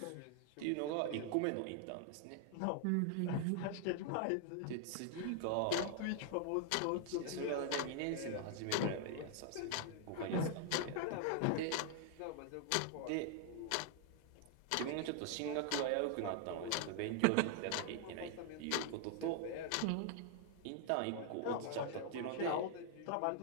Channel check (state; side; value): different; both; correlation 0.00